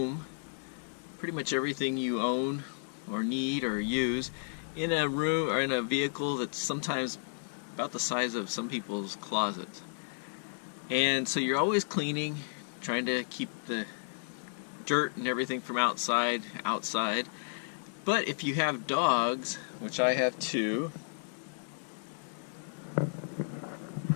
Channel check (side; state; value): right; silent; digital silence